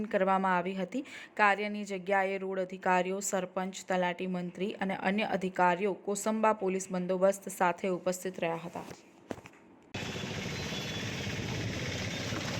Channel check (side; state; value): both; identical; correlation 1.00